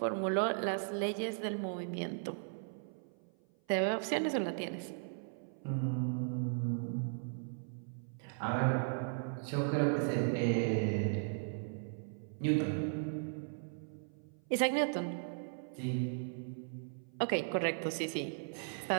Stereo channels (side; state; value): left; silent; 53 dB below the other